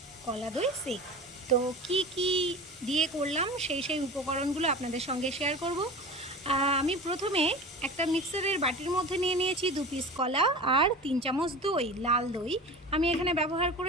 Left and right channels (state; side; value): normal; both; correlation 0.34